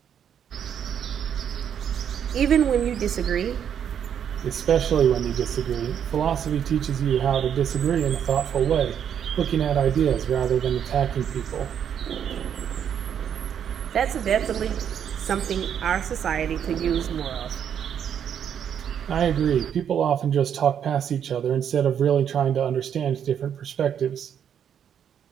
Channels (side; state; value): left; quieter; 8.7 dB